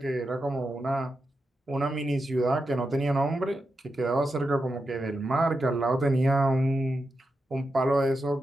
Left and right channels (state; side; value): normal; both; correlation 0.88